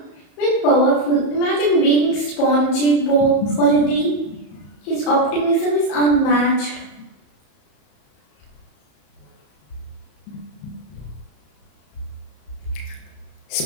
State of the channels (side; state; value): right; late; 34 ms